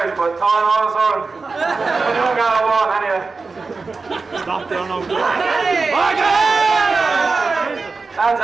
but Tom always on. I don't got a wall anyway. Stop there now. Lads,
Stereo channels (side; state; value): left; quieter; 4.2 dB